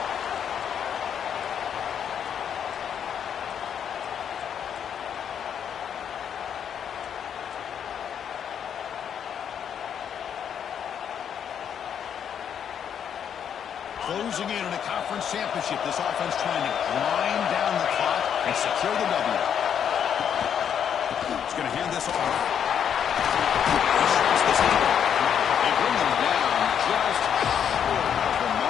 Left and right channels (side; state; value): right; quieter; 8.4 dB